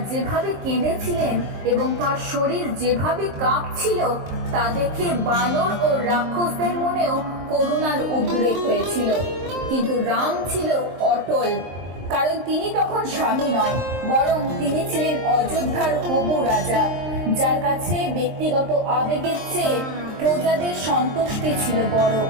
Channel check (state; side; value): late; left; 23 ms